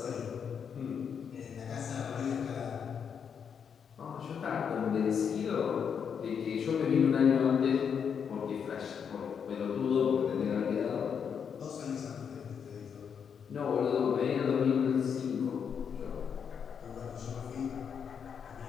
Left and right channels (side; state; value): right; quieter; 7.2 dB